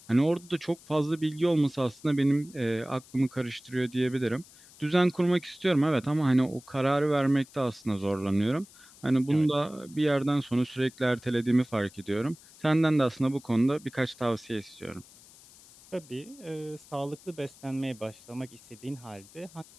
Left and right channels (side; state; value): left; noise; hiss, 23 dB below the sound